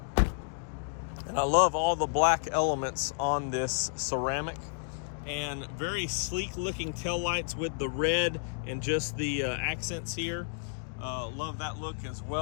And I love all the black elements on this ceramic, and very sleek looking taillights with the red and just the accents here. Love that look as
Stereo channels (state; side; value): silent; right; digital silence